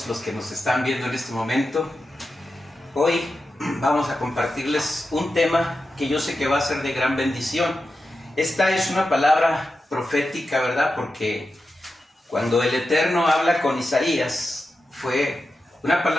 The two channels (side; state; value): both; normal; correlation 0.91